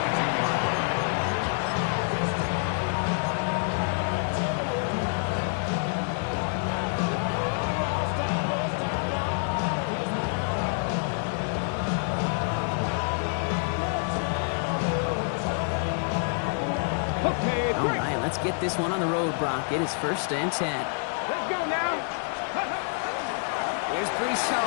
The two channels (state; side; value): silent; right; 60 dB below the other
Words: All right, let's get this one on the road, Brock. It is 1st and 10. Let's go now. Here's Brees